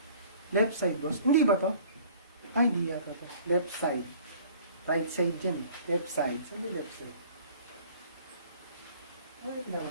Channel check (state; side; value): inverted; both; correlation -0.51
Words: Left side, boss. Hindi ba to? Ay, hindi yata to. Left side. Right side dyan. Left side. Saan yung left side? Ay,